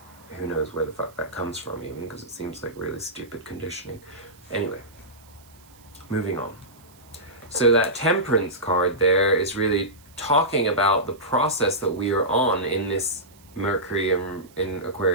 who knows where the fuck that comes from even, because it seems like really stupid conditioning. Anyway, moving on. So that Temperance card there is really talking about the process that we are on in this Mercury in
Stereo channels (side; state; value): right; noise; hiss, 27 dB below the sound